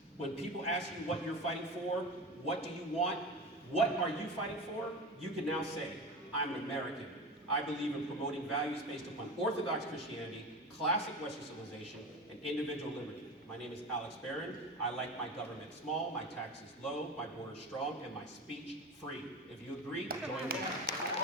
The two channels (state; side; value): normal; both; correlation 0.28